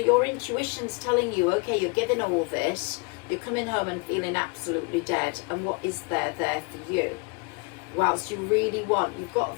intuition's telling you, okay, you're giving all this. You're coming home and feeling absolutely dead. And what is there for you? Whilst you really want, you've got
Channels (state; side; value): quieter; right; 31.4 dB